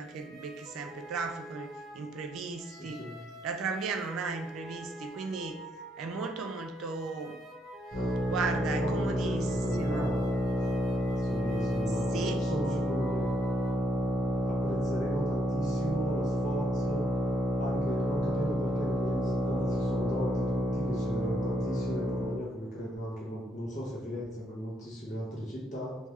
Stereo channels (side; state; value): both; normal; correlation 0.75